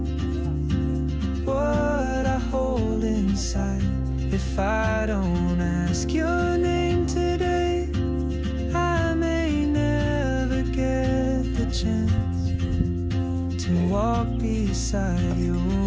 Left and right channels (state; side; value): identical; both; correlation 1.00